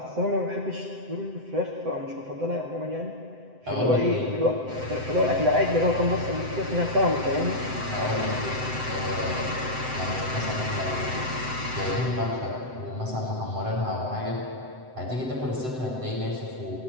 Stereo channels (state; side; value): late; left; 7.8 ms